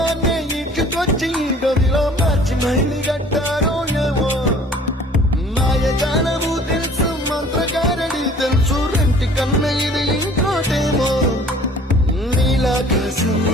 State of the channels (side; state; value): both; normal; correlation 0.52